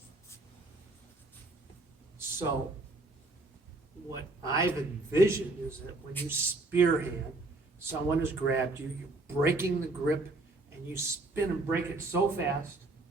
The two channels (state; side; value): quieter; left; 3.0 dB